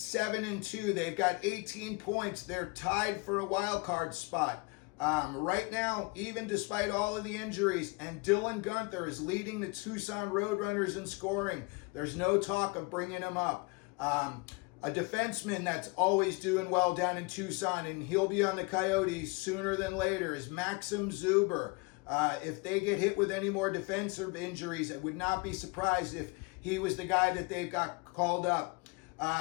They've got 18 points. They're tied for a wild card spot. Right now, even despite all of the injuries, and Dylan Guenther is leading the Tucson Roadrunners in scoring. There's no talk of bringing him up. A defenseman that's always doing well down in Tucson, and he'll be on the Coyotes sooner than later, is Maxim Zuber. If they get hit with any more defensive injuries, I would not be surprised if he was the guy that they got called up.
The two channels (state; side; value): quieter; right; 27.8 dB